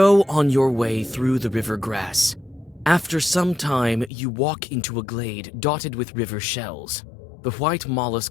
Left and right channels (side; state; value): right; drops out; at 4.1 s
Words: on your way through the river grass. After some time, you walk into a glade dotted with river shells. The white